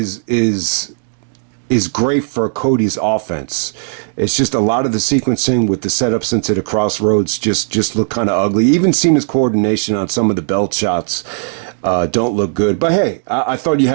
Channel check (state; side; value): silent; left; digital silence